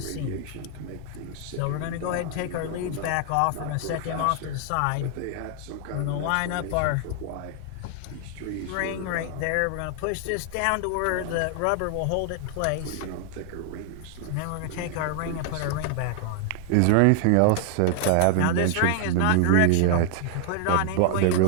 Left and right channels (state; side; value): different; both; correlation 0.00